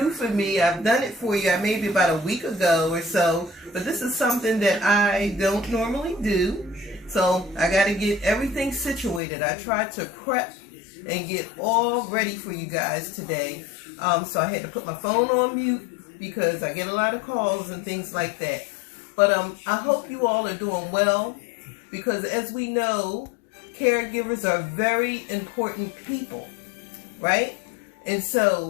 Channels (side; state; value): right; drops out; at 9.2 s